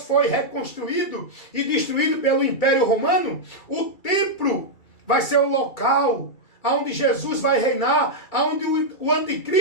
foi reconstruído e destruído pelo Império Romano, o templo vai ser o local onde Jesus vai reinar, onde o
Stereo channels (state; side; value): late; right; 2.3 ms